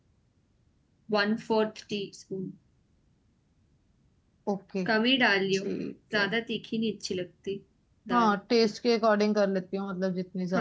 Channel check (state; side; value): identical; both; correlation 1.00